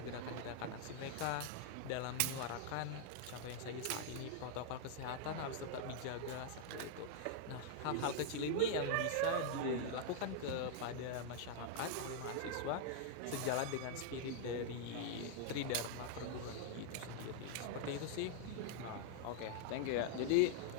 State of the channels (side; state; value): both; different; correlation 0.00